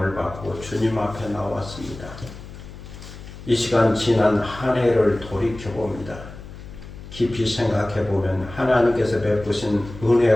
받고 주님 앞에 나왔습니다. 이 시간 지난 한 해를 돌이켜봅니다. 깊이 생각해보면 하나님께서 베푸신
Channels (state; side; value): noise; left; hum, 14 dB below the sound